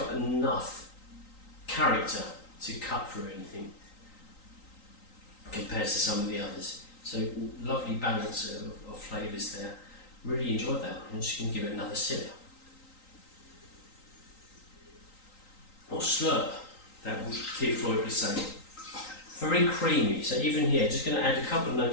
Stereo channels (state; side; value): late; right; 3.9 ms